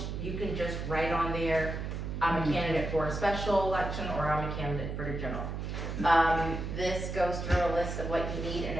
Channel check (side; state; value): right; noise; hum, 4 dB below the sound